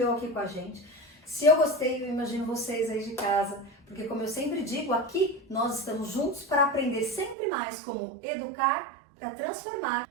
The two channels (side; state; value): left; drops out; at 7.4 s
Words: aqui com a gente. Se eu gostei, eu imagino vocês aí de casa. Porque como eu sempre digo, aqui nós estamos juntos para aprender sempre mais como educar para transformar.